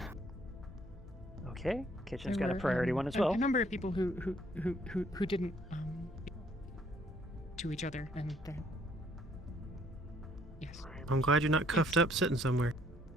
Okay. Kitchen's There got a were, priority one as well. A number of people who didn't to each other, and yes. I'm glad you're not cuffed up sitting somewhere.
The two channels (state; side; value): normal; both; correlation 0.64